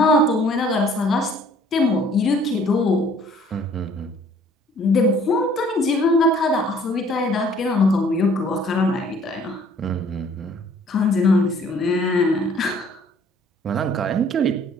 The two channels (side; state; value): both; normal; correlation 0.57